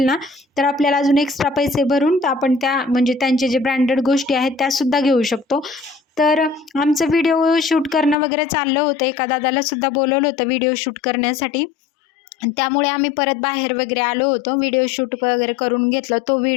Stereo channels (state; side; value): drops out; right; at 8.2 s